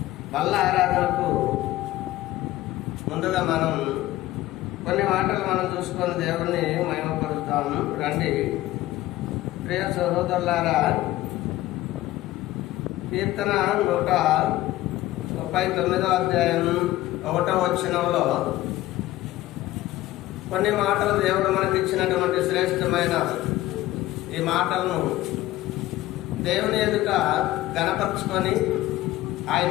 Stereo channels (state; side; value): quieter; right; 16.0 dB